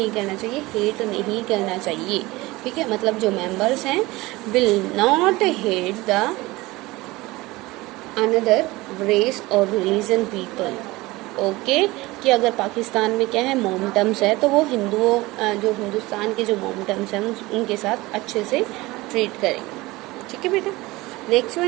करना चाहिए, हेट नहीं करना चाहिए. ठीक है, मतलब जो मेंबर्स हैं will not hate the another race और रिलीजन पीपल. ओके. कि अगर पाकिस्तान में क्या है, मोमटम्स है, तो वो हिंदुओं, जो हिंदुस्तान के जो मोमटम्स हैं उनके साथ अच्छे से ट्रीट करेंगे. ठीक है बेटा. Next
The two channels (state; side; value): quieter; left; 20.6 dB